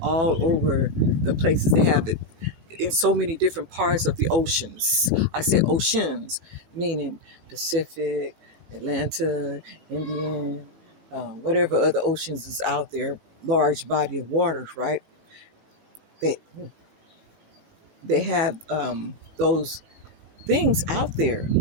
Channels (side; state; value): left; late; 18 ms